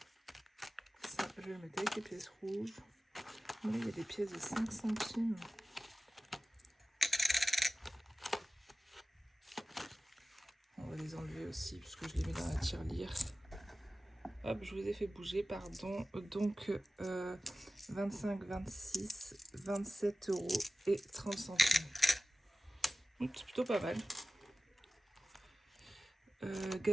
Ça, je vais le mettre avec les pièces rouges. Là, il y a des pièces de 5 centimes. On va les enlever aussi, puisque je les mets dans la tirelire. Hop, je vous ai fait bouger, pardon. Donc, 25, 26, 27 € et 30 centimes. C'est plutôt pas mal.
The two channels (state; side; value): normal; both; correlation 0.96